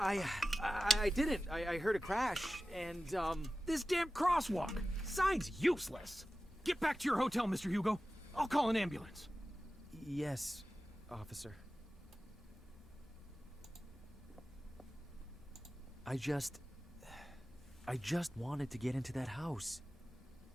didn't. I heard a crash, and, This damn crosswalk! Sign's useless! Get back to your hotel, Mr. Hugo. I'll call an ambulance. Yes, officer. I just wanted to get into that house.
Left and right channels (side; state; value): both; normal; correlation 0.95